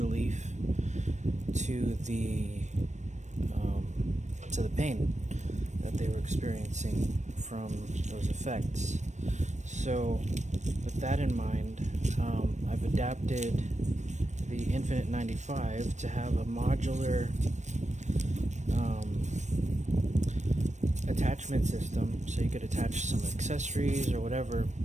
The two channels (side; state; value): left; late; 0.34 ms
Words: to the pain that they were experiencing from those effects. So with that in mind, I've adapted the Infinite 95 to have a modular attachment system, so you could attach some accessories or whatever